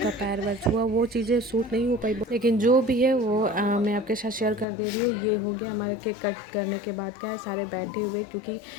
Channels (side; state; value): right; drops out; at 4.7 s